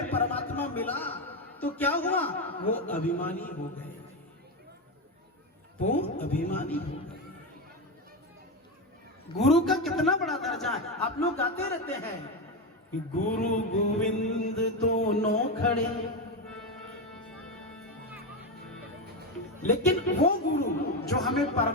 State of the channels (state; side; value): normal; both; correlation 0.12